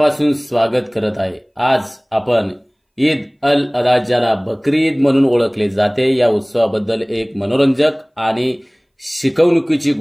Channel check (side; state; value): both; identical; correlation 1.00